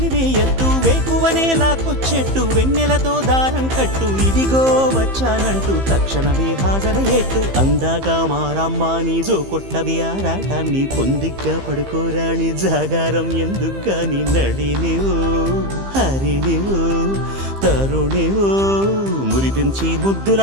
వేకువనే లాక్కొచ్చేట్టు వెన్నెలతో దారం కట్టు ఇదిగో వచ్చానంటూ తక్షణమే హాజరయ్యేట్టు అందాక మారమ్మ నీ జో కొట్టవి ఆరాటాన్ని పొందిగ్గా పడుకోరాని జాగారం ఎందుకని నడినివో హరినివో తరుణివో మురిపించి ముద్దుల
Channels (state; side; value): late; left; 15 ms